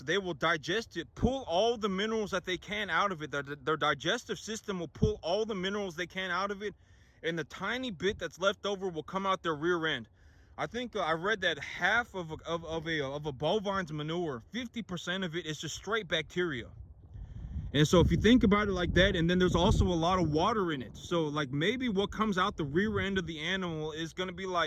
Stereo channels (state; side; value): identical; both; correlation 1.00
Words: will digest it, pull all the minerals that they can out of it. Their digestive system will pull all the minerals they can out of it, and the tiny bit that's left over will come out their rear end. I think I read that half of a bovine's manure, 50% of it is just straight bacteria. And so if you think about it like that, and then there's also a lot of water in it. So like maybe what comes out the rear end of the animal is going to be